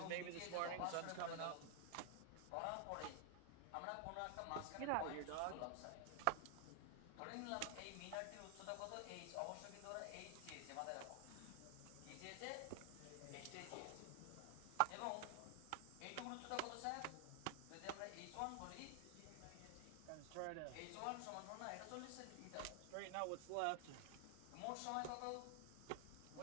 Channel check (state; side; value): different; both; correlation 0.00